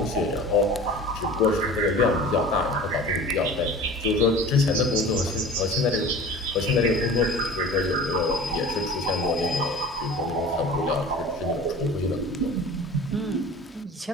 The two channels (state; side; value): normal; both; correlation 0.40